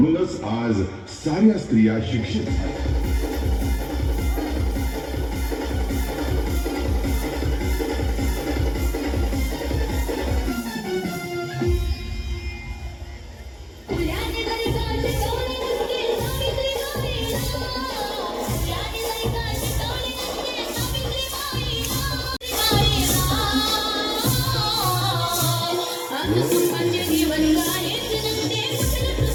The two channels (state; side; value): identical; both; correlation 1.00